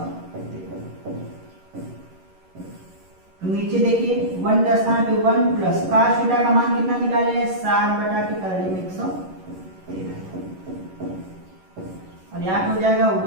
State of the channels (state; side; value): late; left; 11 ms